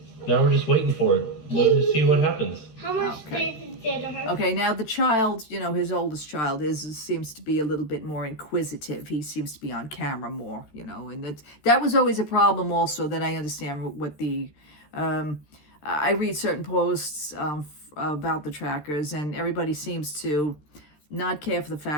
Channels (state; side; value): late; right; 13 ms